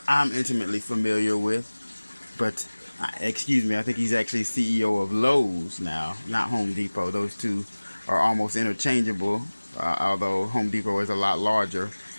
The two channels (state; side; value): inverted; both; correlation -1.00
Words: I'm intimately familiar with. But excuse me, I think he's actually CEO of Lowe's now, not Home Depot. Those two are almost interchangeable, although Home Depot is a lot larger.